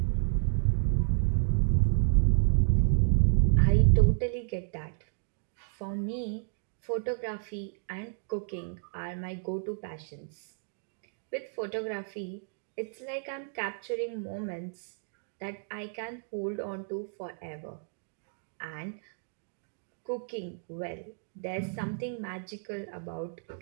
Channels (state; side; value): silent; left; digital silence